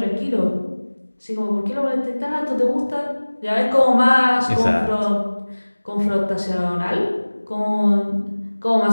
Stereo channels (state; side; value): inverted; both; correlation -1.00